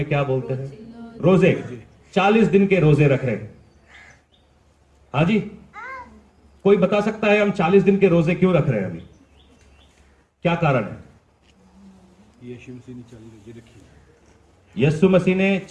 क्या बोलते हैं? रोजे। 40 दिन के रोजे रख रहे हैं। हाँ जी, कोई बता सकता है हम 40 दिन के रोजे क्यों रख रहे हैं? अभी क्या कारण है? यीशु मसीह ने 40 रोजे रखे। यीशु मसीह ने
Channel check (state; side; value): identical; both; correlation 1.00